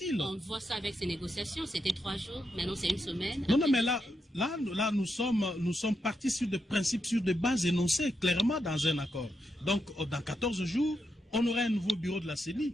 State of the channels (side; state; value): both; normal; correlation 0.84